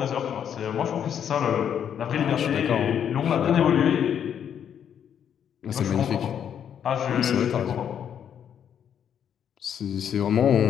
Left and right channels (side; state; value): right; quieter; 8.8 dB